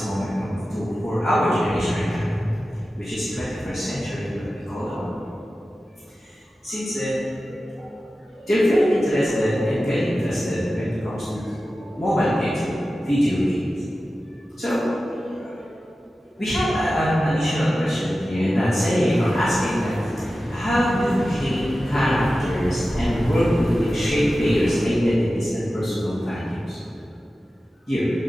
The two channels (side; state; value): both; normal; correlation 0.94